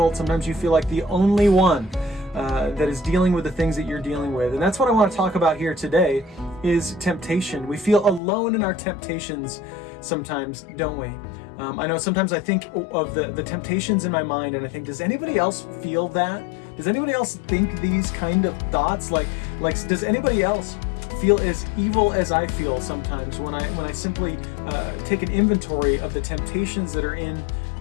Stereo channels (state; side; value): drops out; right; at 8.2 s